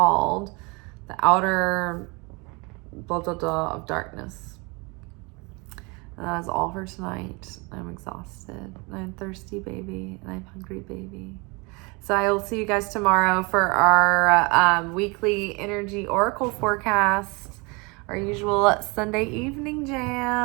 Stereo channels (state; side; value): quieter; left; 28.6 dB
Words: the outer blah blah blah of darkness. And that is all for tonight. I'm exhausted. I'm thirsty, baby, and I'm hungry, baby. So I will see you guys tomorrow for our weekly energy oracle forecast, our usual Sunday evening